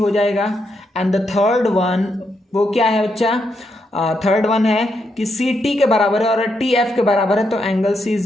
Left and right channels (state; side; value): normal; both; correlation 0.81